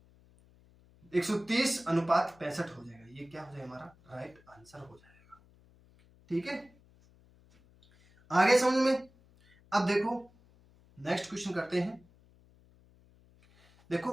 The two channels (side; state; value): left; noise; hum, 28 dB below the sound